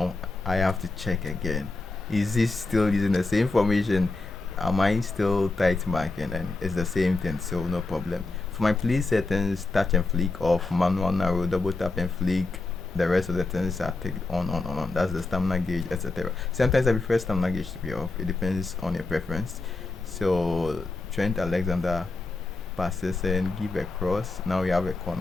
I have to check again. Is this still using the same formation? Am I still tight marking? And it's the same thing, so no problem. For my play settings, touch and flick off, manual narrow, double tap and flick. The rest of the things are taken on. That's the stamina gauge, etc. Sometimes I prefer stamina gauge to be off. It depends on your preference. So Trent Alexander passes and give a cross. Now we have a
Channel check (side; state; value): right; quieter; 3.3 dB